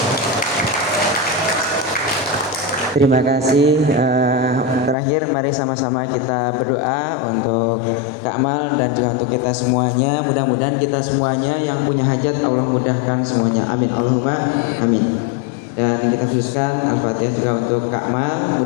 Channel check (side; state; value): right; drops out; at 5.0 s